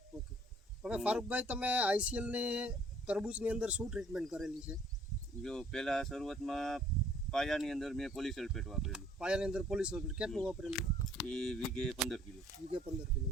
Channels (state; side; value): normal; both; correlation 0.59